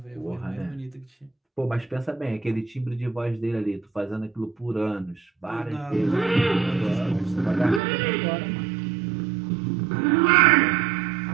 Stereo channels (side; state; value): left; drops out; at 7.8 s